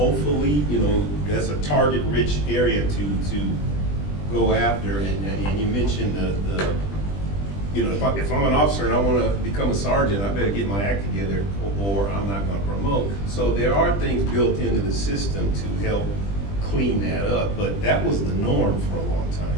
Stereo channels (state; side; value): late; right; 20 ms